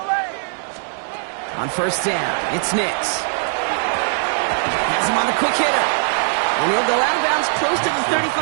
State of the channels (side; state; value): left; silent; digital silence